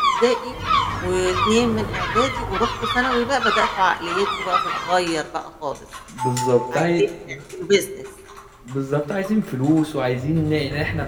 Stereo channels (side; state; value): both; identical; correlation 1.00